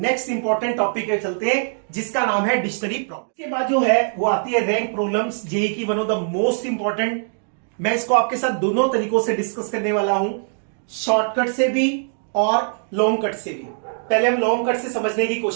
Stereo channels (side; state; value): left; silent; 64 dB below the other